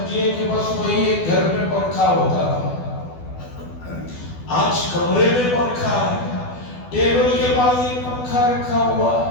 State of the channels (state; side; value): late; right; 12 ms